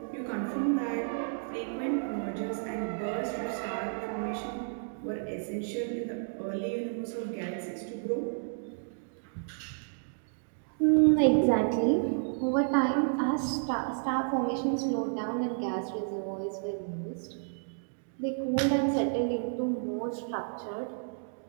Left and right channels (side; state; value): left; silent; digital silence